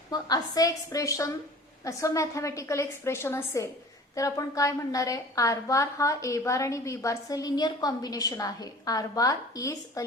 मग असं एक्सप्रेशन असं मॅथमॅटिकल एक्सप्रेशन असेल तर आपण काय म्हणणार आहे आर बार हा ए बार आणि बी बारचं लिनियर कॉम्बिनेशन आहे. R bar is a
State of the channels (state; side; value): normal; both; correlation 0.44